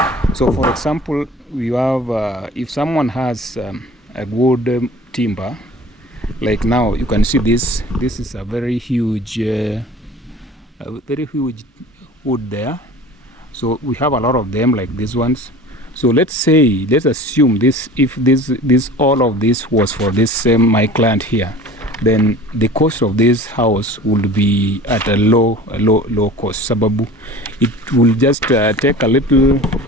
So for example, we have if someone has a good timber, Like now you can see this is a very huge wood there. So we have a lot of them like these ones. So let's assume this, if this all of this was for this same my client here, then the cost of this house would be at a low cost. Sababu it will just take a little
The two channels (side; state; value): both; normal; correlation 0.41